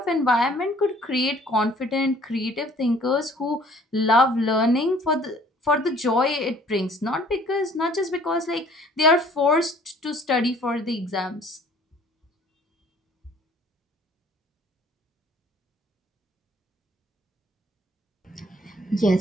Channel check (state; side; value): normal; both; correlation 0.56